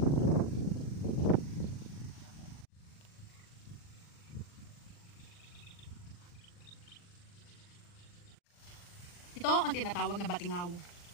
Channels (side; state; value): right; late; 40 ms